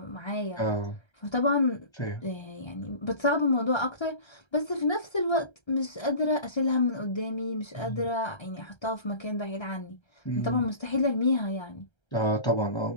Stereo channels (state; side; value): late; right; 1.3 ms